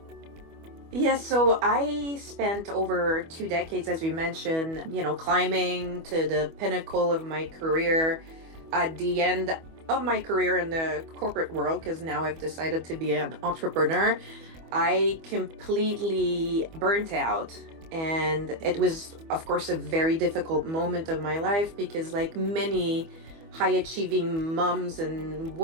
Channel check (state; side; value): late; left; 25 ms